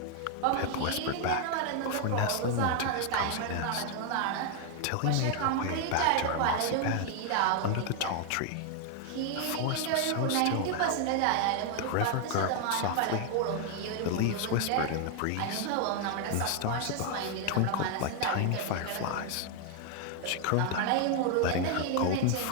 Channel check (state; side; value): different; both; correlation 0.00